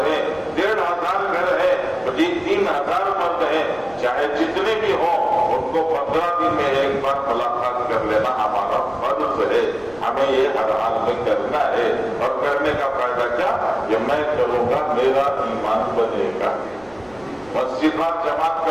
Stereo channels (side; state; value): right; noise; rumble, 26 dB below the sound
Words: ہیں، 1500 گھر ہیں، 3000 مرد ہیں، چاہے جتنے بھی ہوں ان کو 15 دن میں ایک بار ملاقات کر لینا ہمارا فرض ہے. ہمیں یہ ہر حال میں کرنا ہے. اور کرنے کا فائدہ کیا؟ کہ میں کروں گا میرا ایمان بنے گا. مسجد میں جماعت کا